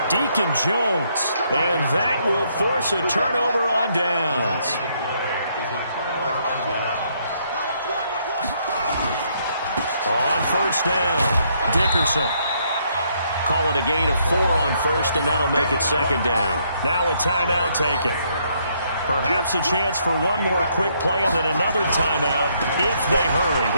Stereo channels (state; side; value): inverted; both; correlation -0.71